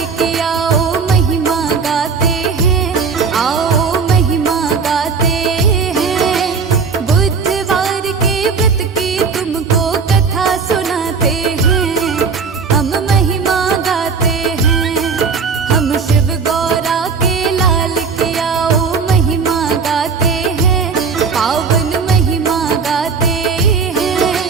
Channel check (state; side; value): quieter; left; 5.3 dB